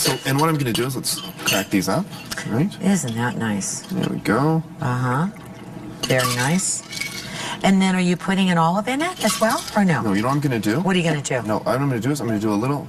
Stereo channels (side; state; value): both; identical; correlation 1.00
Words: So, and what I'm going to do is let's crack these up. Right? Isn't that nice? There we go. Very nice. And then are you putting an olive in it as well, or no? No, you know what I'm going to do? What are you going to do? No, what I'm going to do is I'm going to do a little,